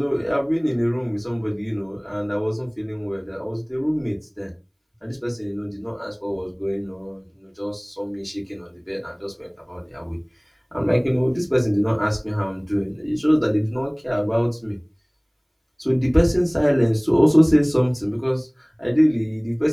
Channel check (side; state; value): both; identical; correlation 1.00